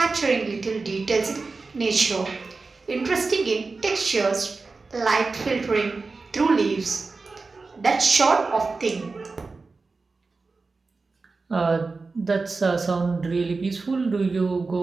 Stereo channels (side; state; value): left; quieter; 4.0 dB